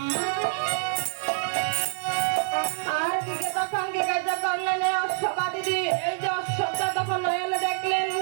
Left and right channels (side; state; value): left; silent; 61 dB below the other